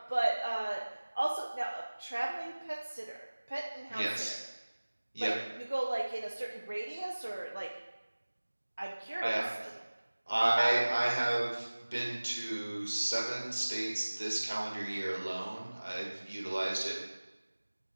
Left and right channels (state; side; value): inverted; both; correlation -1.00